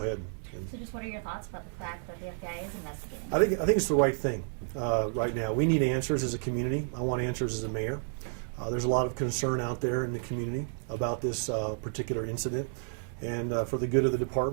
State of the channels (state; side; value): silent; left; 57 dB below the other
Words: ahead. So just what are your thoughts about the fact that the FBI is investigating? I think it's the right thing right now. We need answers as a community. I want answers as a mayor. There's a lot of concern out there in the community about this particular incident, and for the good of the